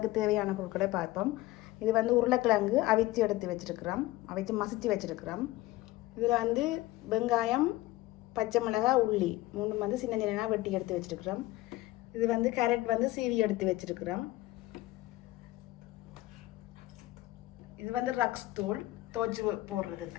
தேவையான பொருட்களை பார்ப்போம். இது வந்து உருளைக்கிழங்கு அவிச்சு எடுத்து வச்சுருக்கிறோம், அவிச்சு மசிச்சு வச்சுருக்கிறோம். இதில் வந்து வெங்காயம், பச்சை மிளகாய், உள்ளி மூணு வந்து சின்ன சின்னதாக வெட்டி எடுத்து வச்சுருக்கிறோம். இது வந்து கேரட் வந்து சீவி எடுத்து வச்சுருக்கிறோம். இது வந்து ரக்ஸ் தூள் துவச்சி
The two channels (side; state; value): right; quieter; 17.8 dB